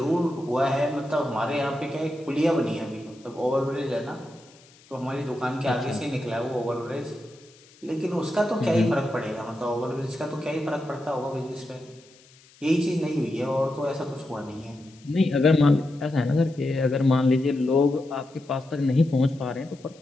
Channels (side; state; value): left; noise; hiss, 27 dB below the sound